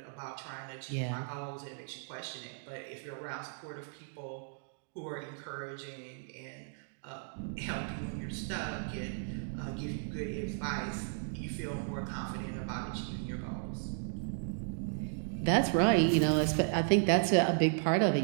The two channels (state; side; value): silent; left; digital silence